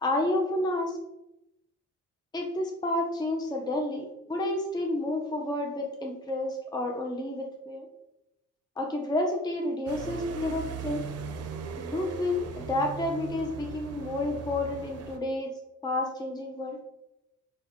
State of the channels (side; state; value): both; normal; correlation 0.46